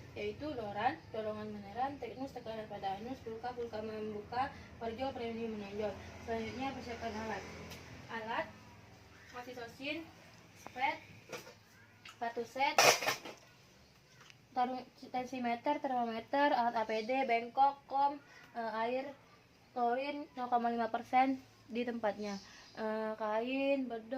yaitu doran, dorongan meneran, teknus tekanan pada anus, pulka membuka, parjo premium menonjol. Selanjutnya persiapkan alat oksitosin, spet, sepatu set, tensimeter, termometer, alat APD, bengkok, air, klorin 0,5% di tempatnya, kain,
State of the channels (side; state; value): both; identical; correlation 1.00